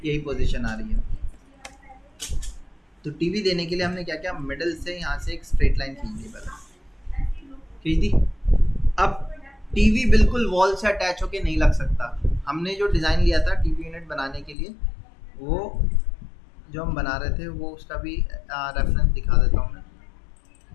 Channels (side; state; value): right; drops out; at 14.6 s